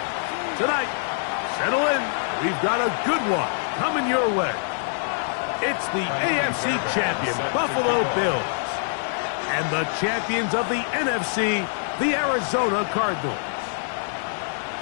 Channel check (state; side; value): silent; right; 62 dB below the other